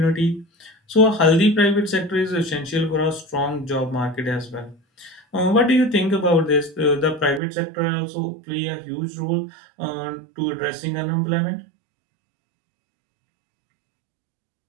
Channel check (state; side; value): drops out; left; at 7.4 s